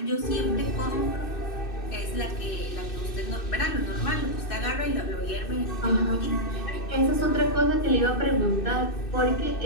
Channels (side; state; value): right; late; 2.6 ms